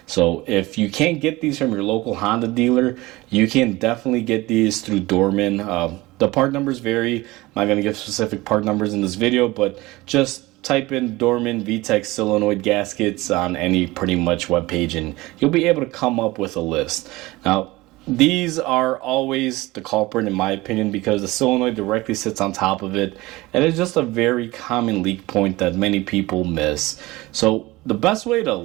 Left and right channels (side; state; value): left; quieter; 20.2 dB